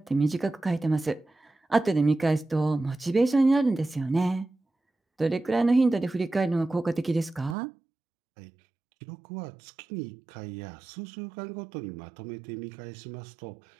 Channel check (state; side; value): drops out; left; at 7.6 s